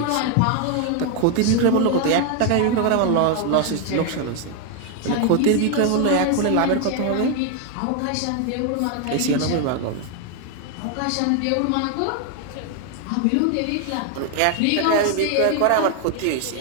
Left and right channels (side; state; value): both; different; correlation 0.01